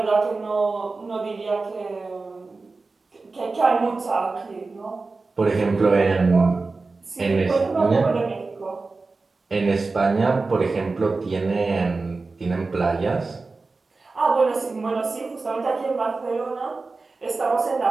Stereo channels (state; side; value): quieter; left; 3.8 dB